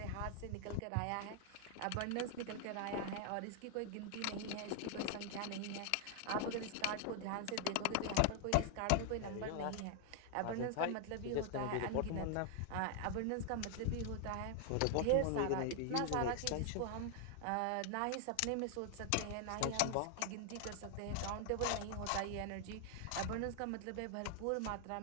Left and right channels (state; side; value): different; both; correlation 0.00